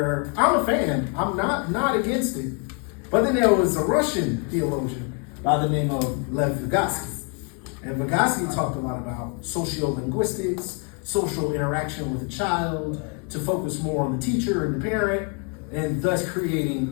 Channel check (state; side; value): quieter; right; 37.3 dB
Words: I'm a fan, I'm not against it. But then there was a Russian theologian by the name of Lev Vygotsky. And Vygotsky talked a lot about sociolinguistics, social interaction with a child, to focus more on the teacher and the parent, and thus creating